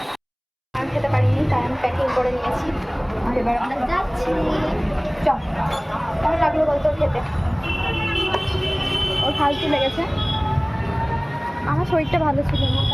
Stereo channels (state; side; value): identical; both; correlation 1.00